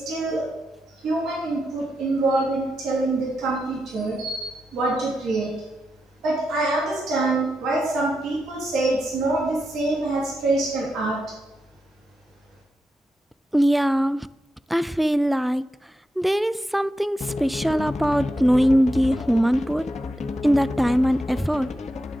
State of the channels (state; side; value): normal; both; correlation 0.87